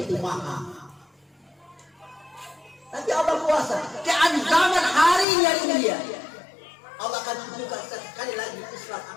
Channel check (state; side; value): drops out; right; at 5.2 s